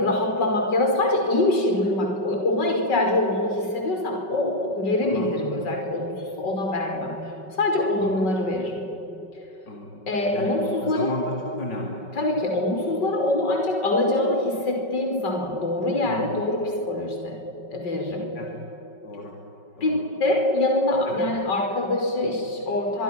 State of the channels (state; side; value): late; right; 5.3 ms